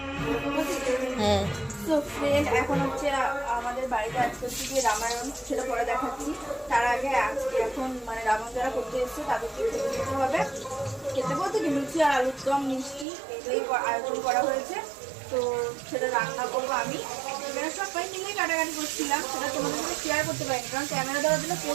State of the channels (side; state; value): left; drops out; at 13.1 s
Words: হ্যাঁ তো ফ্রেন্ড এখন হচ্ছে আমাদের বাড়িতে আজকে হচ্ছে গিয়ে রামায়ণ, সেটা পরে দেখাচ্ছি। তার আগে আজকে এখন মানে রামায়ণ যারা করতে এসছে তাদেরকে খেতে দিতে হবে। খেতে বলতে কি লুচি আর আলুর দম মিষ্টি এগুলোই আয়োজন করা হয়েছে। তো সেটা রান্না করবো আমি। এখানে সবাই মিলেই কাটাকাটি করছিলাম, সেটা তোমাদের সাথে শেয়ার করতে পারিনি কারণ ক্যামেরা দেওয়ার জন্য